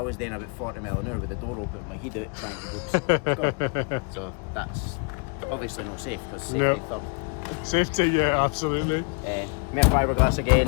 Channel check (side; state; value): right; quieter; 34.2 dB